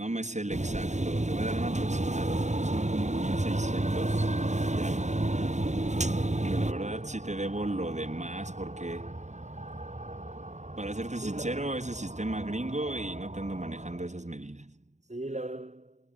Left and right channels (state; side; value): late; left; 0.34 ms